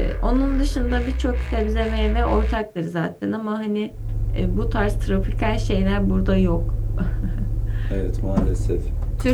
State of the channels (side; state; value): both; identical; correlation 1.00